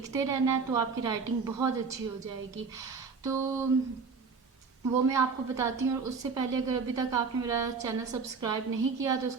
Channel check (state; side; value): quieter; left; 5.0 dB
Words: रहना है, तो आपकी राइटिंग बहुत अच्छी हो जाएगी। तो वो मैं आपको बताती हूँ। और उससे पहले अगर अभी तक आपने मेरा चैनल सब्सक्राइब नहीं किया तो